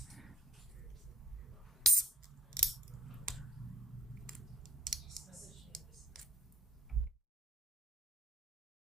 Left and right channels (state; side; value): normal; both; correlation 0.65